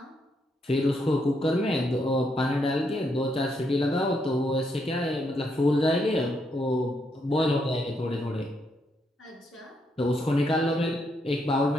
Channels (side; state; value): both; normal; correlation 0.77